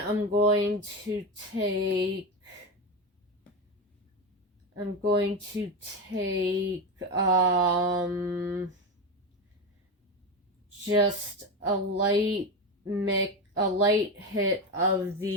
going to take just a light hit of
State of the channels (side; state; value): both; normal; correlation 0.17